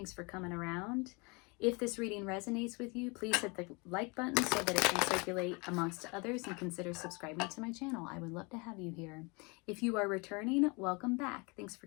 for coming around. If this reading resonates with you, please hit the like button so that it can circulate amongst others, and consider subscribing to my channel. I would love to have you here. If you are returning, welcome back. Thanks for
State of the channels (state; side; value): quieter; right; 29.1 dB